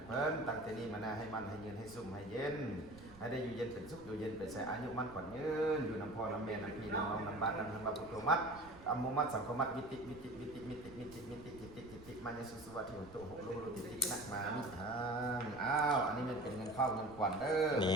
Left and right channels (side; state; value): right; noise; rumble, 19 dB below the sound